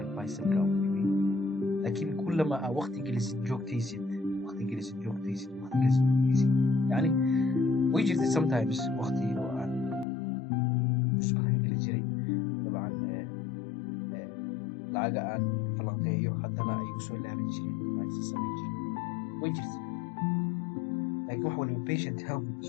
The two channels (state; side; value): drops out; right; at 10.1 s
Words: بايسل ka u dhibiyo laakiin kullama waqti gelisid joogtaysid yani way jirtay sometimes waqti oo aan usbuucan geli jiray dabcan laga aan falanqeeyo haddana ay u soo laaban jireen ay sameyn jireen way jirtay laakiin wax waliba patient help